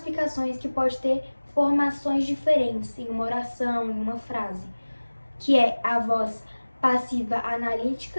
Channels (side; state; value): both; inverted; correlation -1.00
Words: que pode ter formações diferentes em uma oração, em uma frase, que é a voz passiva